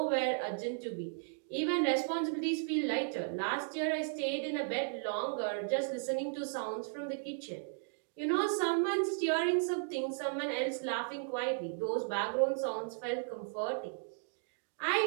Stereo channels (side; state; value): left; silent; digital silence